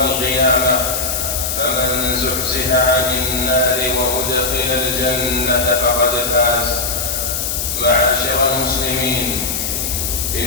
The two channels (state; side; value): noise; left; hiss, 2 dB below the sound